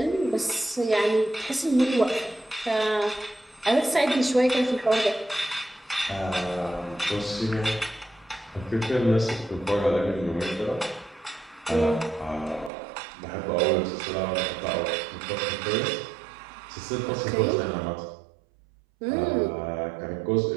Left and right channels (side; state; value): left; drops out; at 12.7 s